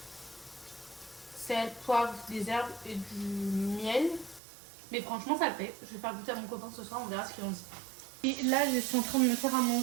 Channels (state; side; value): drops out; left; at 4.4 s